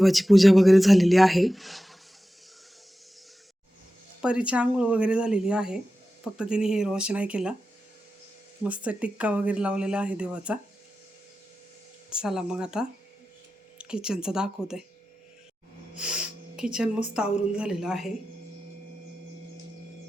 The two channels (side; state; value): both; normal; correlation 0.93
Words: पूजा वगैरे झालेली आहे. परीची आंघोळ वगैरे झालेली आहे. फक्त तिने हेअर वॉश नाही केला. मस्त टिक्का वगैरे लावलेला आहे देवाचा. चला मग आता किचनचं दाखवते. किचन मस्त आवरून झालेलं आहे.